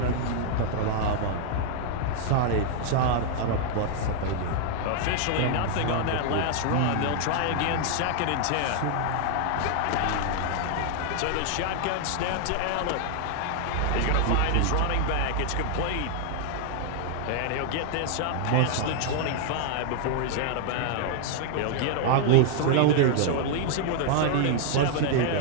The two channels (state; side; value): different; both; correlation 0.00